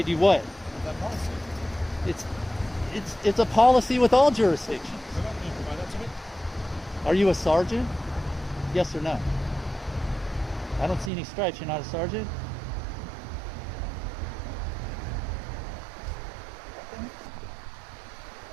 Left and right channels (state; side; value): drops out; left; at 11.1 s